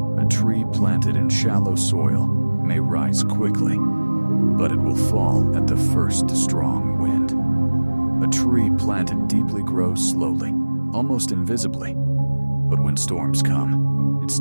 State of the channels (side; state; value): both; inverted; correlation -1.00